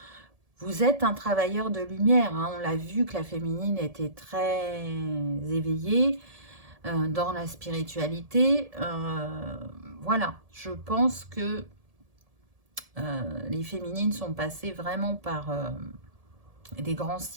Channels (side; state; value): left; late; 1.7 ms